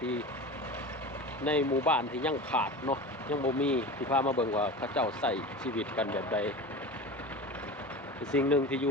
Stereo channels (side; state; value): both; normal; correlation 0.31